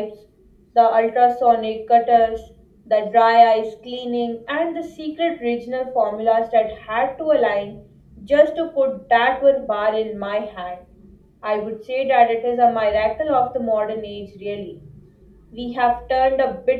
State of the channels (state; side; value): identical; both; correlation 1.00